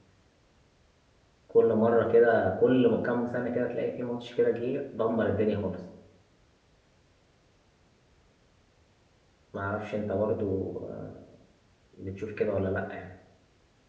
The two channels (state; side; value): identical; both; correlation 1.00